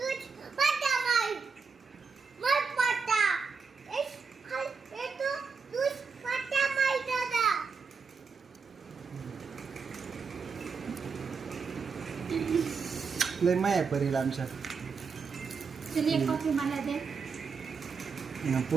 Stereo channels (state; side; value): quieter; left; 5.3 dB